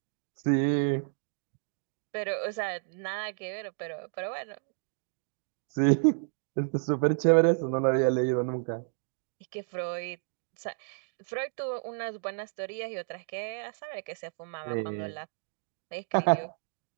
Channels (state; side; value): silent; left; digital silence